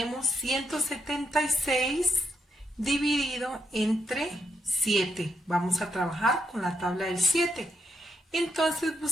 176 dividido entre 7. Vamos a trabajar con la tabla del 7. Entonces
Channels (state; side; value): normal; both; correlation 0.80